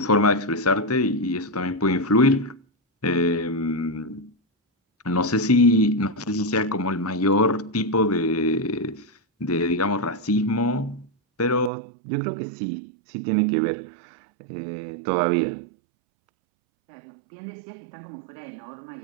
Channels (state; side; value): drops out; left; at 11.7 s